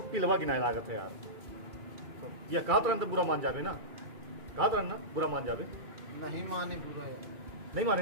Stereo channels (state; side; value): late; left; 2.3 ms